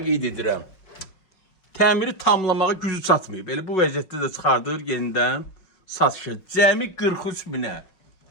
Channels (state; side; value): late; right; 5.5 ms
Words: qeyd edirəm. Təmiri tamlamağa gücü çatmayıb. Elə bu vəziyyətdə də çıxardır yenidən satışa. Cəmi 43 minə.